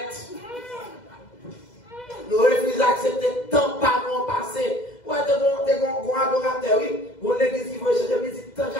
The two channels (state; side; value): late; right; 2.0 ms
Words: Nous refusons d'accepter tant pas non passé. Ouais, t'es bon adorateur, oui. Bon, l'église qui veut chercher, mais dit tant